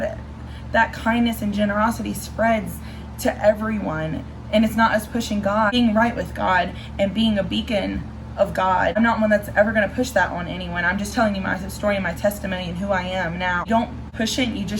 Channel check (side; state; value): both; identical; correlation 1.00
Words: that kindness and generosity spreads to everyone. And it's not us pushing God, being right with God and being a beacon of God. I'm not one that's ever going to push that on anyone. I'm just telling you my story and my testimony and who I am now. You don't push it, you